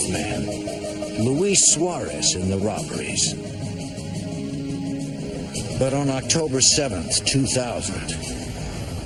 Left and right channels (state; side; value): identical; both; correlation 1.00